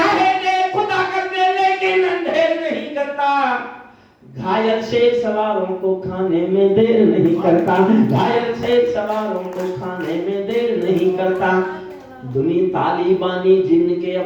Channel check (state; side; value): identical; both; correlation 1.00